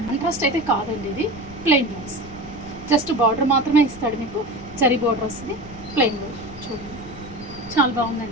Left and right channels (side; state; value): left; noise; rumble, 17 dB below the sound